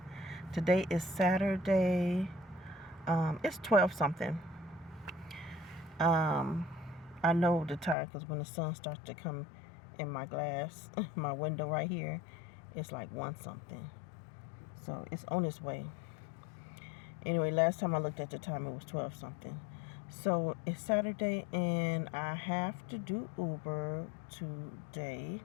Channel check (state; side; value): drops out; right; at 8.0 s